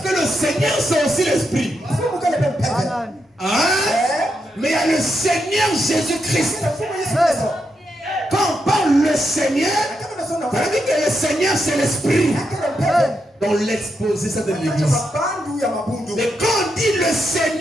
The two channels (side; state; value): both; normal; correlation 0.83